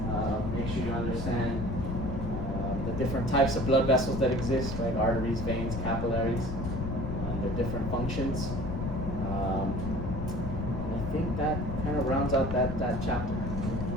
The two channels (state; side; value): noise; left; rumble, 4 dB below the sound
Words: Make sure you understand the different types of blood vessels that exist, right? Arteries, veins, capillaries, their different functions. And I think that kind of rounds out that chapter.